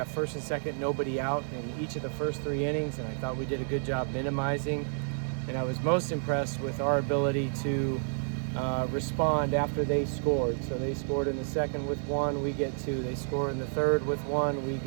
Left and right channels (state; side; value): silent; left; digital silence